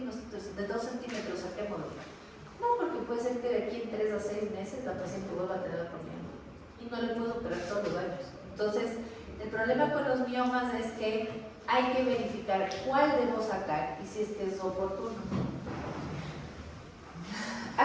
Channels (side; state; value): both; identical; correlation 1.00